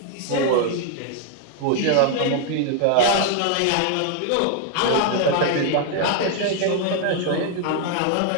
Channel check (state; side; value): different; both; correlation 0.00